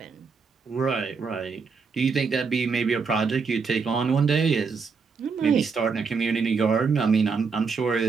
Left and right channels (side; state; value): left; quieter; 5.1 dB